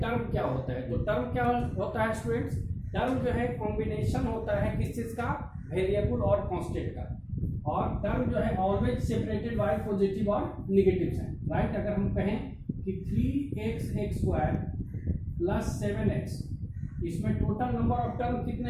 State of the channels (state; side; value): identical; both; correlation 1.00